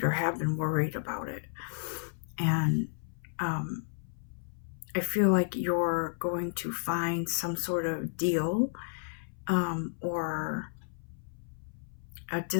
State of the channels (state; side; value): silent; right; 56 dB below the other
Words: or have been worried about it. And I feel like you're going to find some sort of deal or a